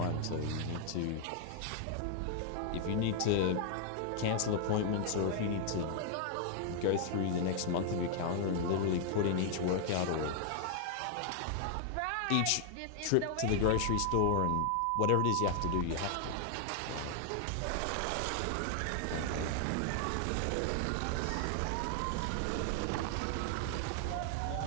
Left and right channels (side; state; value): both; different; correlation 0.00